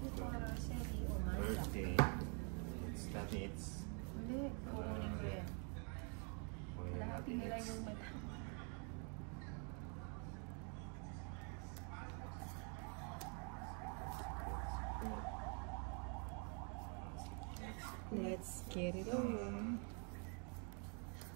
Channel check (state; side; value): quieter; left; 38.6 dB